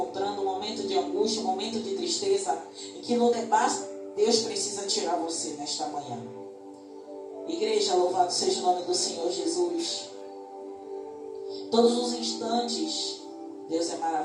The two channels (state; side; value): identical; both; correlation 1.00